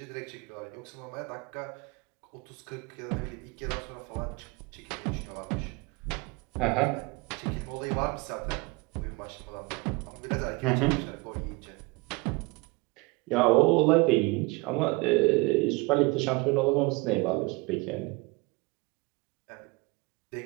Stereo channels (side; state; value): left; quieter; 25.8 dB